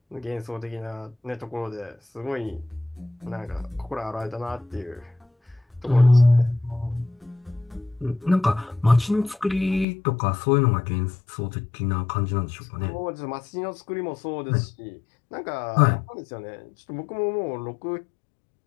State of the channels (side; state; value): right; drops out; at 9.9 s